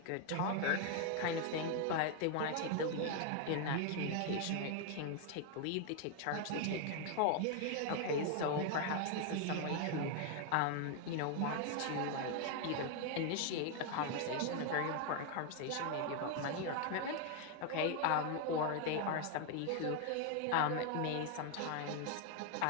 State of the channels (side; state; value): both; different; correlation 0.01